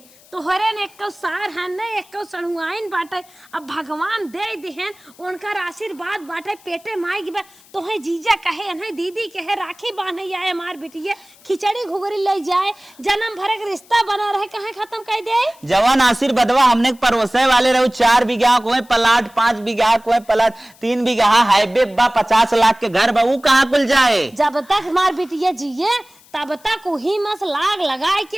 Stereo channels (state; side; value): noise; left; hiss, 27 dB below the sound